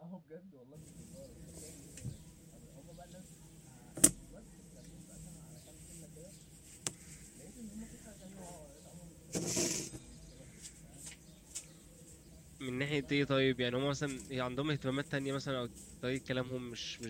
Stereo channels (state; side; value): identical; both; correlation 1.00